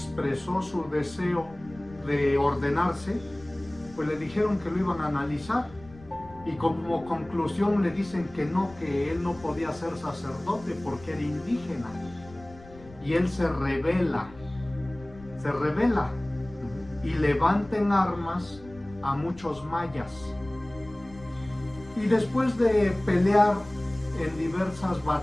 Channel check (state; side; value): noise; left; rumble, 21 dB below the sound